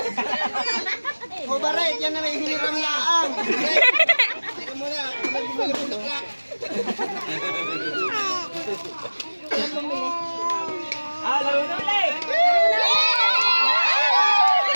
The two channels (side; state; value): both; inverted; correlation -1.00